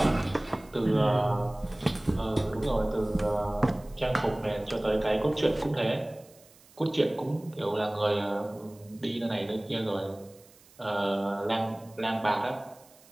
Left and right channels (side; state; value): right; noise; hiss, 26 dB below the sound